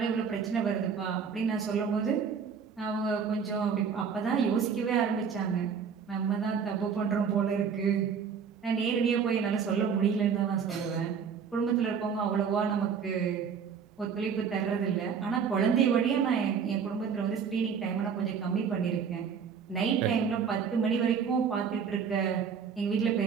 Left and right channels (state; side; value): quieter; left; 6.6 dB